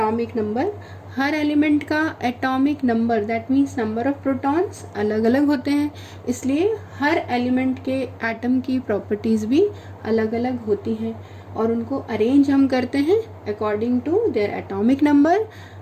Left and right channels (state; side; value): identical; both; correlation 1.00